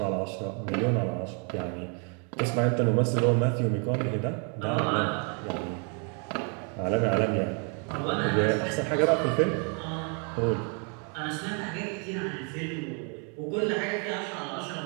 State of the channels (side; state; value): left; quieter; 37.7 dB